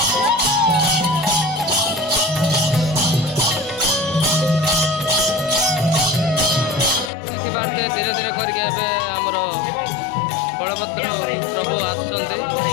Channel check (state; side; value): drops out; right; at 7.1 s